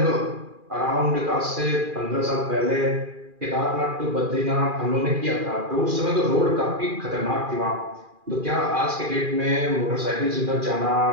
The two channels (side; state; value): left; late; 2.4 ms